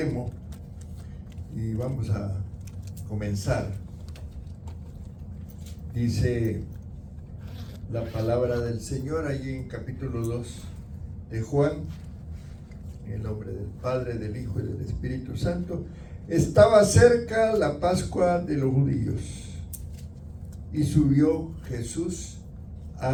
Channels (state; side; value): identical; both; correlation 1.00